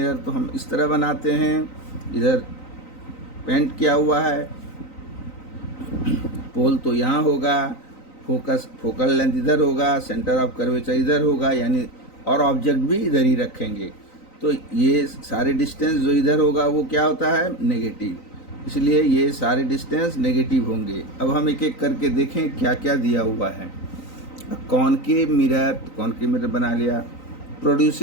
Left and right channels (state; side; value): late; right; 3.9 ms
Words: तो हम इस तरह बनाते हैं, इधर पेंट किया हुआ है, पोल तो यहाँ होगा, फोकल लेंथ इधर होगा, सेंटर ऑफ कर्वेचर इधर होगा, यानी और ऑब्जेक्ट भी इधर ही रखेंगे। तो ये सारे डिस्टेंस जो इधर होगा वो क्या होता है? नेगेटिव, इसलिए ये सारे डिस्टेंस नेगेटिव होंगे। अब हम एक एक करके देखें क्या क्या दिया हुआ है। कॉनकेव मिरर बना लिया।